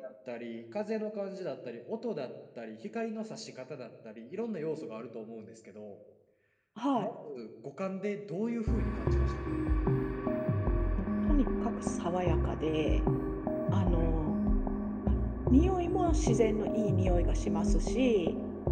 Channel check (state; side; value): identical; both; correlation 1.00